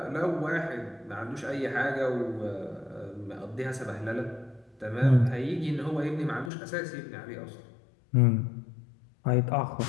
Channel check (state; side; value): drops out; right; at 6.5 s